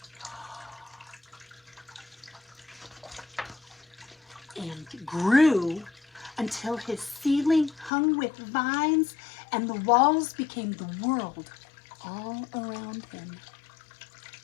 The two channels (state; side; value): drops out; right; at 7.9 s